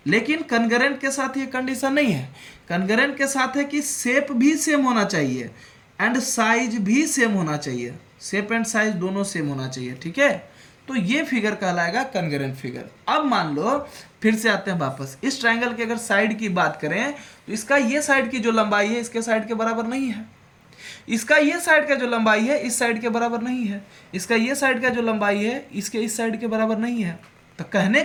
लेकिन कन्ग्रेंट के साथ ये कंडीशन नहीं है। कन्ग्रेंट के साथ है कि शेप भी सेम होना चाहिए एंड साइज भी सेम होना चाहिए, शेप एंड साइज दोनों सेम होना चाहिए। ठीक है, तो ये फिगर कहलाएगा कन्ग्रेंट फिगर। अब मान लो, फिर से आते हैं वापस, इस ट्रायंगल की अगर साइड की बात करें तो इसका ये साइड की जो लंबाई है इसके साइड के बराबर नहीं है, इसका ये साइड का जो लंबाई है इस साइड के बराबर नहीं है, इसका ये साइड का जो लंबाई है इसके इस साइड के बराबर नहीं है। तो कहने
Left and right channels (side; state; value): both; identical; correlation 1.00